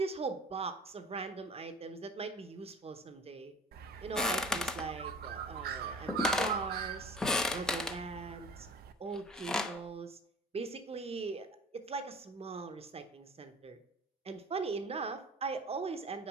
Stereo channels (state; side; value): normal; both; correlation 0.41